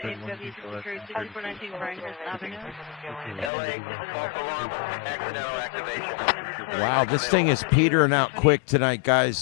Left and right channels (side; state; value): right; drops out; at 3.5 s